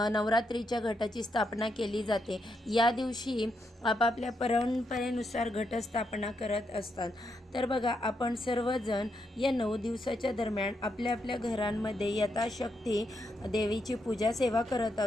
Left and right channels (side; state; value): both; normal; correlation 0.81